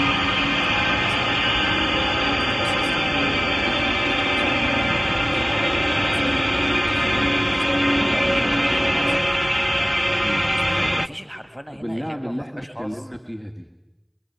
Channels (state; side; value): identical; both; correlation 1.00